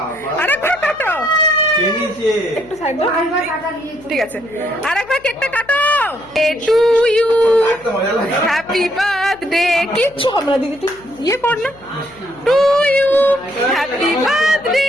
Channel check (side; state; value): left; noise; hum, 25 dB below the sound